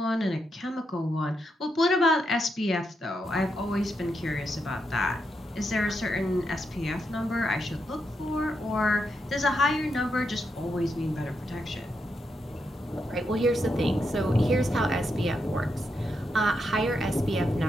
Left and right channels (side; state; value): both; normal; correlation 0.83